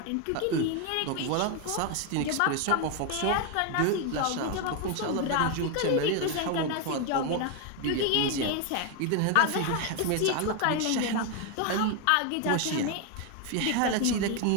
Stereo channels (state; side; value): different; both; correlation 0.01